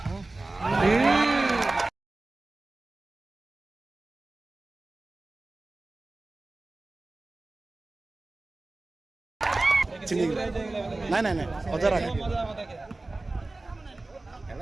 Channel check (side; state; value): left; quieter; 3.1 dB